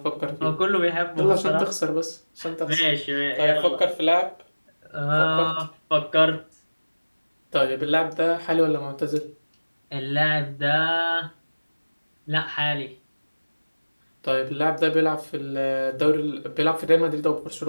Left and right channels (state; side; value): inverted; both; correlation -1.00